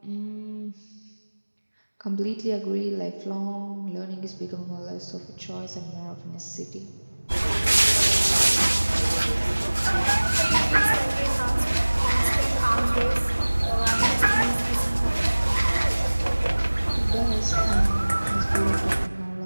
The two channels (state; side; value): inverted; both; correlation -1.00